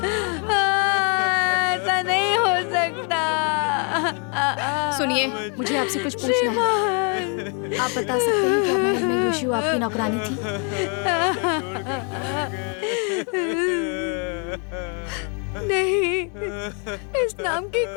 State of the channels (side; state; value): right; quieter; 38.3 dB